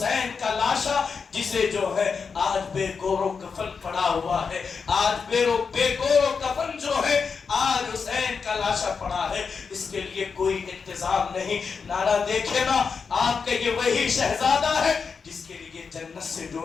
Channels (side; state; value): right; quieter; 5.5 dB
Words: کا لاشا جسے جو ہے آج بے گور و کفن پڑا ہوا ہے، آج بے گور و کفن جو ہے آج حسین کا لاشا پڑا ہے، اس کے لیے کوئی انتظام نہیں۔ نانا دیکھے نا، آپ کا یہ وہی شہزادہ ہے جس کے لیے جنت سے